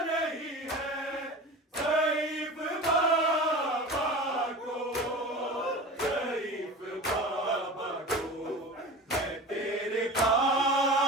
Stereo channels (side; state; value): both; normal; correlation 0.34